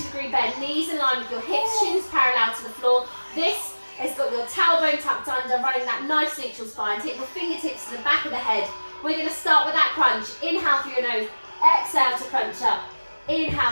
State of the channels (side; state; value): both; inverted; correlation -1.00